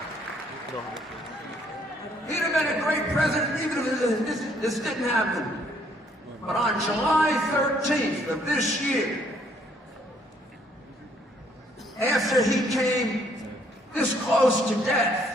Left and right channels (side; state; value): both; normal; correlation 0.66